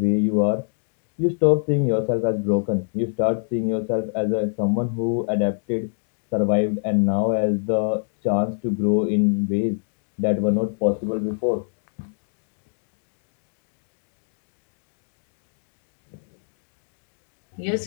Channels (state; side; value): silent; right; 61 dB below the other